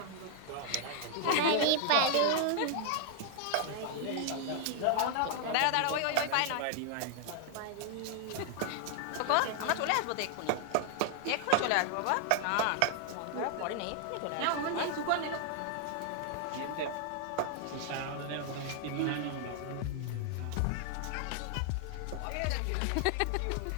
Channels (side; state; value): both; different; correlation 0.00